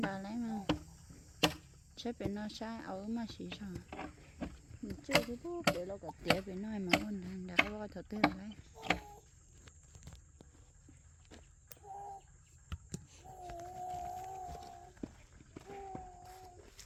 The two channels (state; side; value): identical; both; correlation 1.00